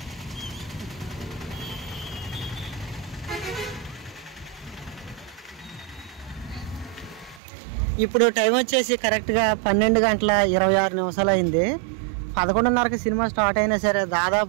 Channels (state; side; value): drops out; left; at 7.4 s